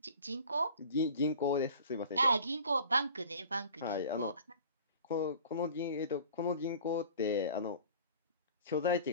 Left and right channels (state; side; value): inverted; both; correlation -0.44